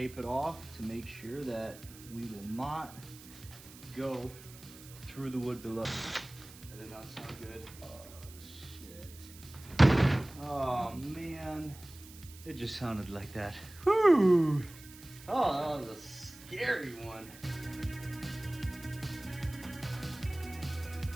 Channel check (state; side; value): noise; right; hiss, 19 dB below the sound